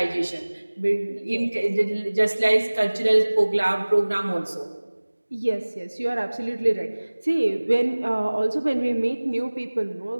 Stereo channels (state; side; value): inverted; both; correlation -1.00